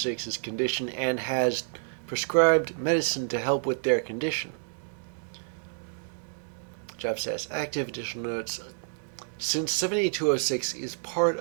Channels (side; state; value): left; silent; digital silence